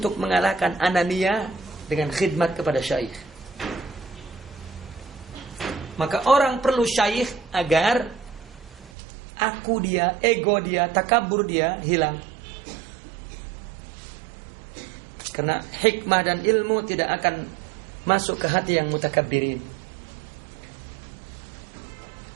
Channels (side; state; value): left; drops out; at 8.9 s